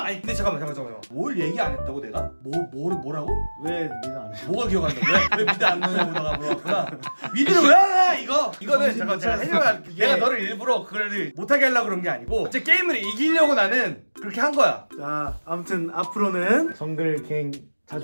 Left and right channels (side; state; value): both; inverted; correlation -1.00